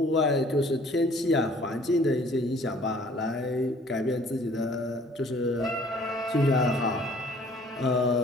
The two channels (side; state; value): both; normal; correlation 0.55